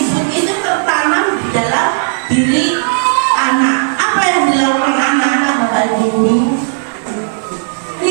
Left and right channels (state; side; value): silent; left; digital silence